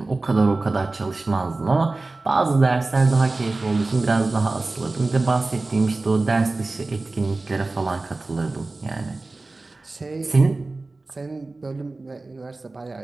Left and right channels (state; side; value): quieter; left; 3.3 dB